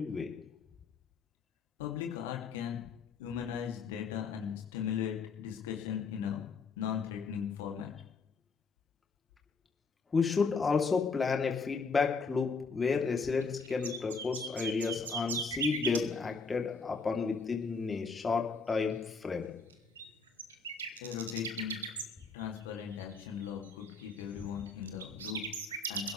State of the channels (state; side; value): quieter; right; 4.5 dB